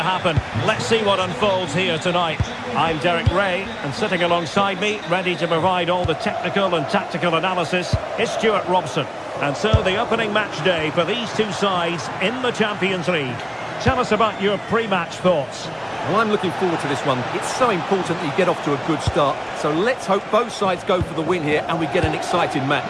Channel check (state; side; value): identical; both; correlation 1.00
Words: Let's see what unfolds here tonight. I'm Derek Ray, and sitting alongside me, ready to provide all the technical and tactical analysis, is Stuart Robson. And so the opening match day for these two sides in the Champions League. Tell us about your pre-match thoughts. Well, I'm looking forward to this one. It's so important that you get off to a good start. So let's hope both sides go for the win here and we get an exciting